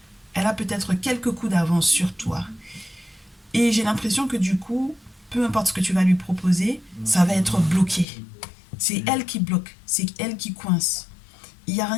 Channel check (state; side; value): drops out; right; at 8.1 s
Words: Elle a peut-être quelques coups d'avance sur toi. Et j'ai l'impression que du coup, peu importe ce que tu vas lui proposer, ça va être bloqué. C'est elle qui bloque, c'est elle qui coince. Il n'y a